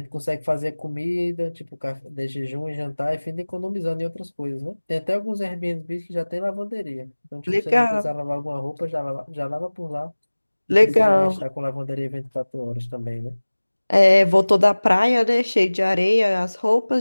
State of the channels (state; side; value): inverted; both; correlation -1.00